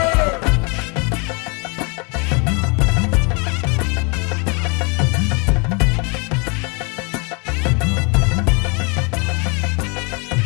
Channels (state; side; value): quieter; right; 32.1 dB